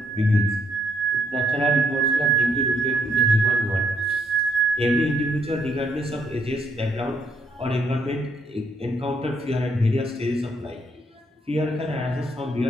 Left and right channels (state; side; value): normal; both; correlation 0.73